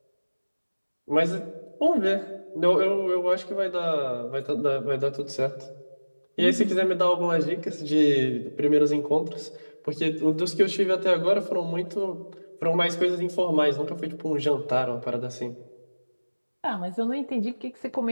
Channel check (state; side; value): inverted; both; correlation -1.00